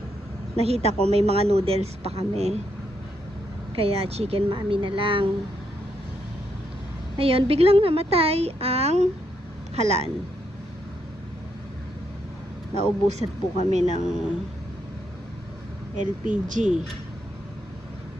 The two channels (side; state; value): both; normal; correlation 0.78